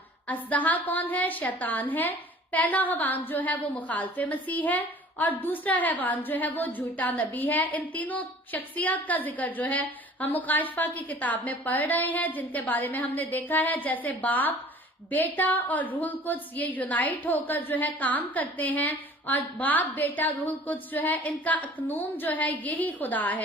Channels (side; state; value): both; normal; correlation 0.48